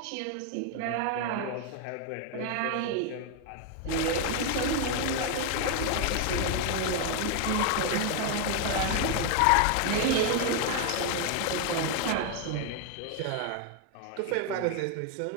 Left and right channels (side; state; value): both; different; correlation 0.01